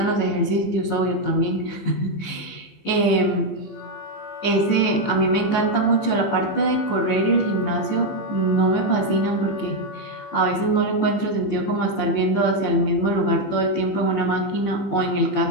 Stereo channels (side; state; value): right; late; 15 ms